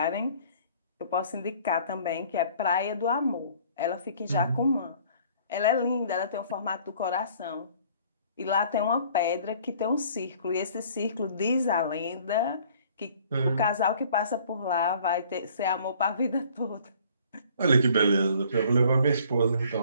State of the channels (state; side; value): inverted; both; correlation -0.55